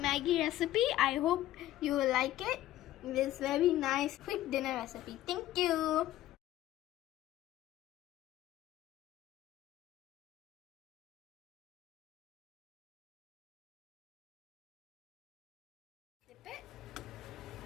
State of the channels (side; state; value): right; quieter; 14.2 dB